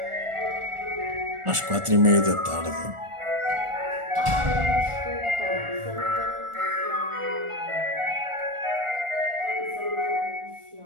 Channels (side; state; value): left; late; 1.4 ms